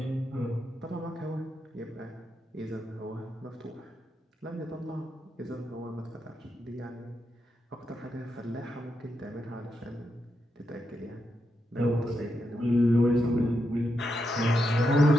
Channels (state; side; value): normal; both; correlation 0.84